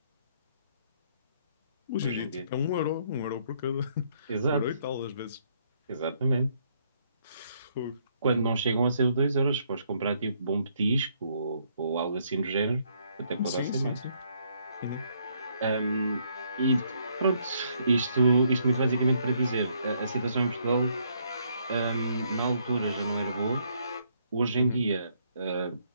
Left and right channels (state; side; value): inverted; both; correlation -0.70